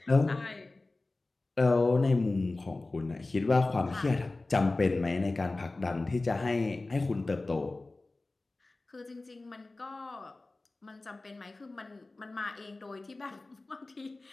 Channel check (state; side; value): quieter; right; 3.2 dB